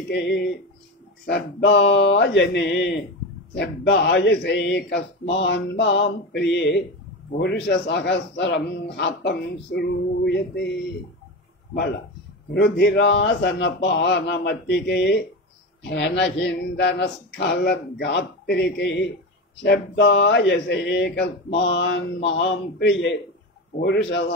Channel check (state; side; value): normal; both; correlation 0.21